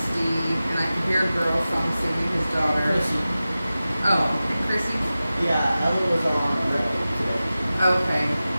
and I could hear a girl song singing his daughter. Chrissy. Oh, and Chrissy. Yeah, Ella was on the road today. Okay.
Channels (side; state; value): both; inverted; correlation -0.95